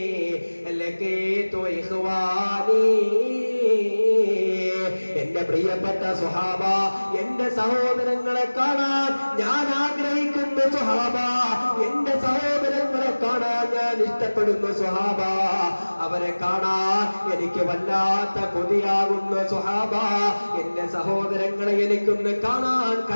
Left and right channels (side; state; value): both; inverted; correlation -1.00